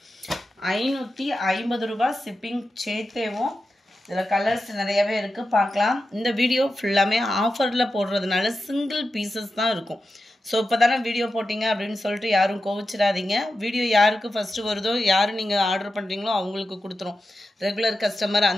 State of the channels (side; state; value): both; normal; correlation 0.91